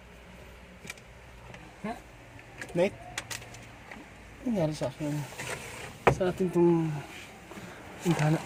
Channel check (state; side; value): identical; both; correlation 1.00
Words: Nate? Ano nangyari sa akin? Sa atin itong intana.